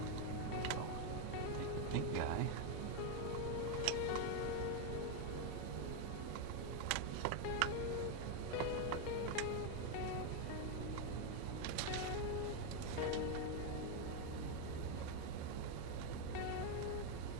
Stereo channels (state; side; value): different; both; correlation 0.01